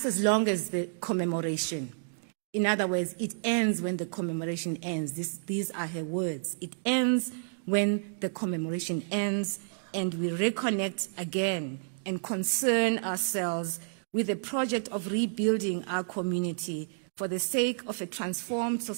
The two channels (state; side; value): silent; left; digital silence